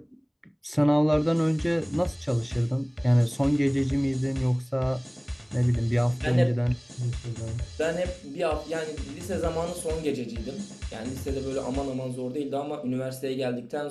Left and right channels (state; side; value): identical; both; correlation 1.00